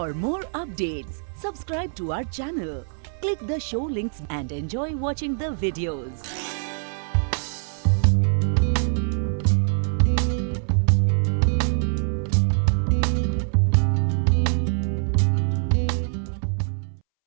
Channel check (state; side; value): silent; left; 63 dB below the other